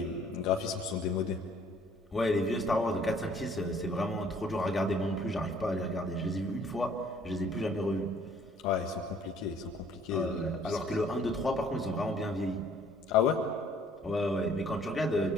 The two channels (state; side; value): normal; both; correlation 0.58